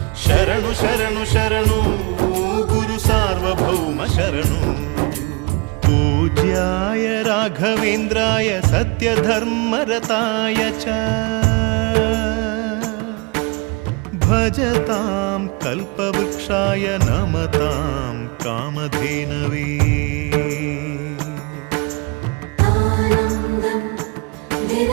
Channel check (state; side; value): quieter; left; 28.5 dB